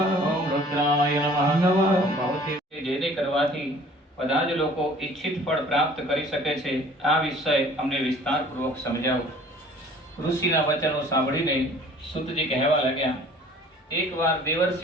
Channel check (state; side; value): normal; both; correlation 0.51